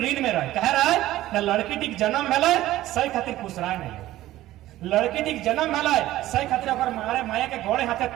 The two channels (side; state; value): left; quieter; 15.2 dB